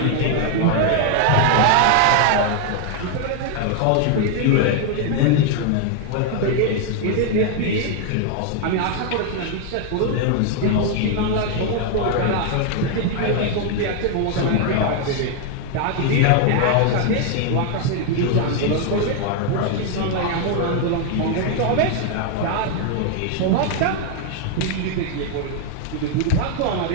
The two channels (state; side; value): different; both; correlation 0.00